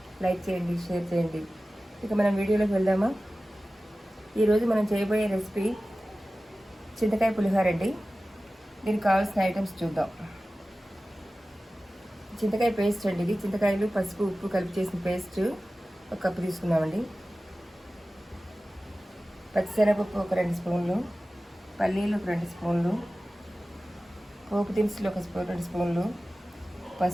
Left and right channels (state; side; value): normal; both; correlation 0.96